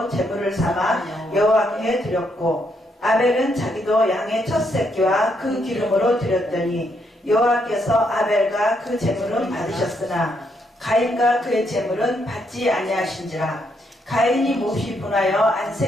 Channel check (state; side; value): normal; both; correlation 0.76